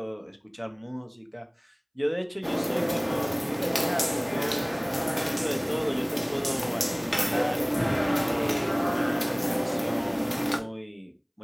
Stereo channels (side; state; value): both; identical; correlation 1.00